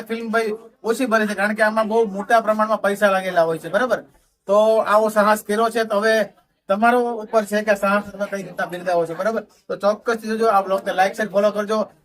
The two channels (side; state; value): both; identical; correlation 1.00